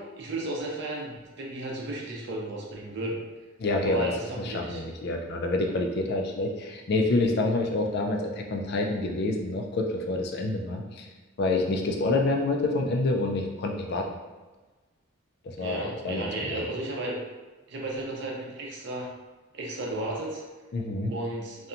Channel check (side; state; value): both; normal; correlation 0.34